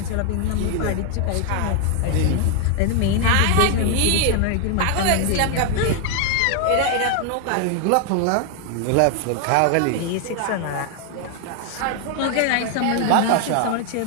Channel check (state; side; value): different; both; correlation 0.00